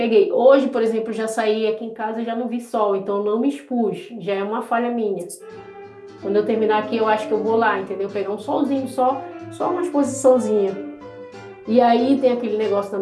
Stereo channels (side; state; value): both; identical; correlation 1.00